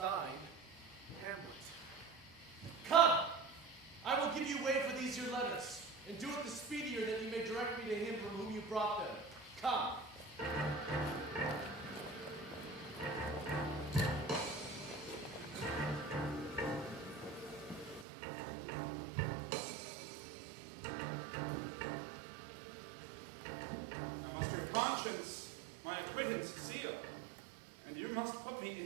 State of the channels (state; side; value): drops out; left; at 18.1 s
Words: Hamlet. Come! I will give you way for these your letters, and do it the speedier that you may direct me to him from whom you brought them. Come! I must your conscience my acquittance seal, and you must put me